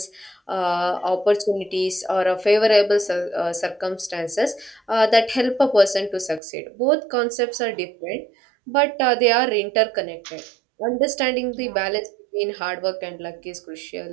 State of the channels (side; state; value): left; drops out; at 6.4 s